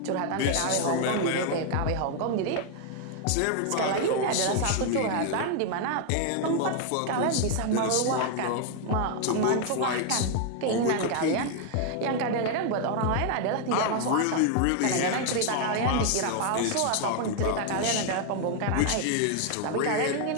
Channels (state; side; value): different; both; correlation 0.00